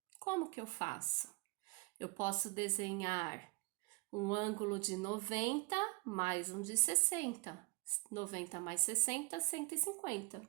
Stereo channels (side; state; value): left; quieter; 27.9 dB